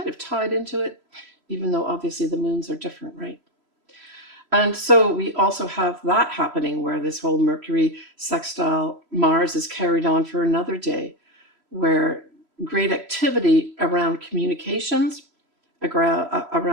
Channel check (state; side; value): late; left; 3.0 ms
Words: of tied into it, even though obviously the moons are different, right? And so we also have that happening where this whole Mercury sextile Mars is carried on for another day, where great activity around communications,